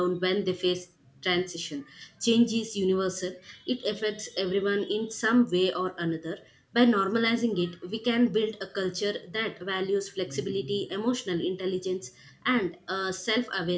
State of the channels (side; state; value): both; identical; correlation 1.00